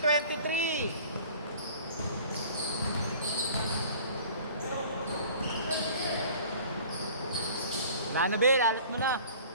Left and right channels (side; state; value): both; inverted; correlation -0.47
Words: Wala na, Bel. Alat mo na.